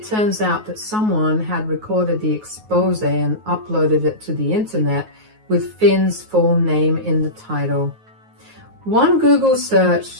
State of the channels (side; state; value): left; late; 9.4 ms